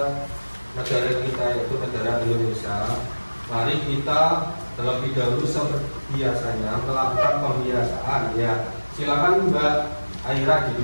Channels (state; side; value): inverted; both; correlation -1.00